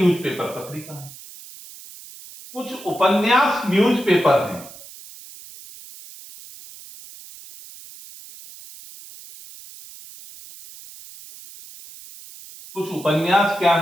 पत्रिका है। कुछ उपन्यास न्यूज़पेपर हैं। कुछ उपन्यास क्या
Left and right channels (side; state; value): right; noise; hiss, 18 dB below the sound